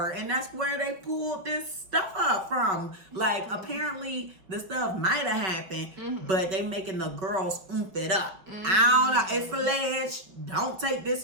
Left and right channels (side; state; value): left; late; 5.3 ms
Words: And that's where they pulled this stuff up from. Like, apparently, the stuff might have happened, but they making the girls oomph it up. I don't know. It's alleged. Don't take this